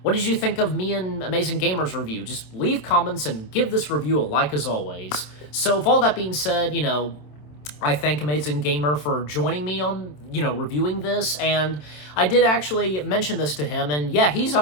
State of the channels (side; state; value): right; late; 27 ms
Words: what did you think of me and Amazing Gamer's review? Just leave comments and give this review a like as always. So with all that being said, I thank Amazing Gamer for joining me on, reviewing this, and I did actually mention this to him, and yeah, he's